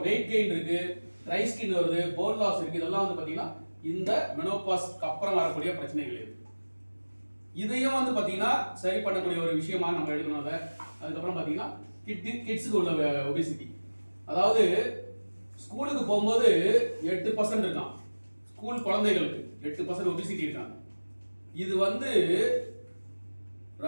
வெயிட் கெயின் இருக்கு, ட்ரை ஸ்கின் வருது, போன் லாஸ் இருக்கு. இதெல்லாம் வந்து பாத்தீங்கன்னா இந்த மெனோபாஸ்க்கு அப்புறம் வரக்கூடிய பிரச்சனைகள் இது. இதையும் வந்து பாத்தீங்கன்னா சரி பண்ணக்கூடிய ஒரு விஷயமா நம்ம எடுக்கணும். அதுக்கப்புறம் பாத்தீங்கன்னா கிட்ஸுக்கு உள்ள ஒபிசிட்டி, அதாவது ஸ்கூலுக்கு போகும்போது 8% இருக்கான். ஸ்கூல் குழந்தைகளுக்கு 8% ஒபிசிட்டி இருக்காங்க. இது வந்து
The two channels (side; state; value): both; inverted; correlation -1.00